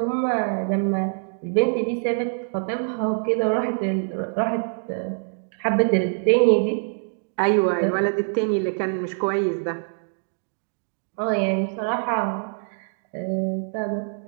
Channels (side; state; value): left; silent; digital silence